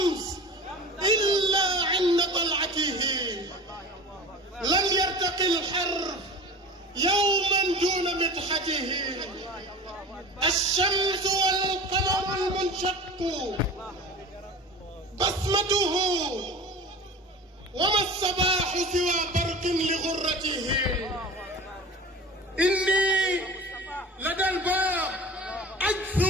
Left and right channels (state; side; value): normal; both; correlation 0.36